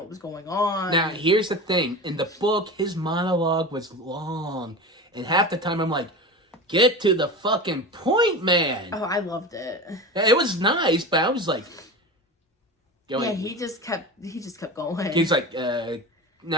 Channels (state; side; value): normal; both; correlation 0.28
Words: was going on. Now, here's the thing. In the book, his monologue was long. And half the time I'm like, get to the fucking point, man. Oh, I loved it. It was nice, but I was like... he just kept going. He's like,